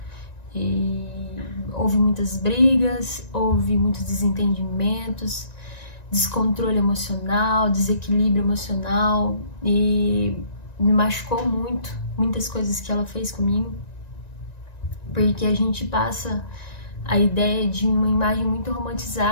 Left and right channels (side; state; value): right; late; 1.9 ms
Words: E houve muitas brigas, houve muitos desentendimentos, descontrole emocional, desequilíbrio emocional, e me machucou muito muitas coisas que ela fez comigo, porque a gente passa a ideia de uma imagem muito